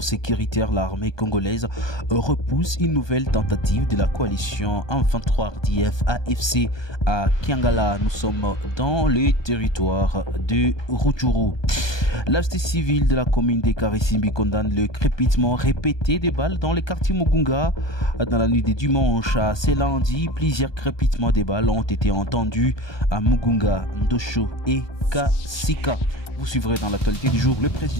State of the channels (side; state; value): right; late; 1.2 ms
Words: sécuritaire. L'armée congolaise repousse une nouvelle tentative de la coalition M23 RDF AFC à Kiangala. Nous sommes dans le territoire de Rutshuru. La société civile de la commune de Karisimbi condamne le crépitement répété des balles dans le quartier Mugunga. Dans la nuit de dimanche à ce lundi, plusieurs crépitements des balles ont été entendus à Mugunga, Ndosho et Kasika. Vous suivrez dans l'actualité du jour le